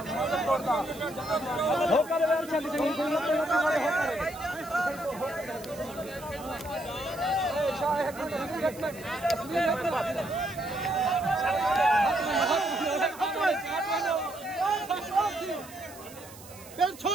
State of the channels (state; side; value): noise; right; hiss, 18 dB below the sound